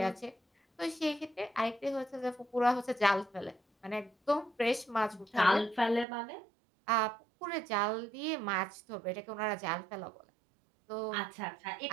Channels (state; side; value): drops out; left; at 6.1 s